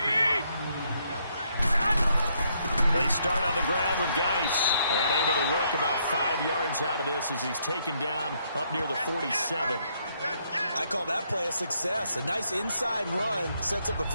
They start on the ground with Geis, and able to work about 5 yards out of this as he's taken down up near the 47. I call that play a success. A nice inside run sets up a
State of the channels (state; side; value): inverted; both; correlation -0.73